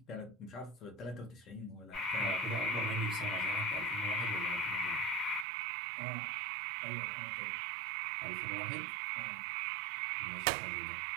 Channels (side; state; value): left; drops out; at 5.5 s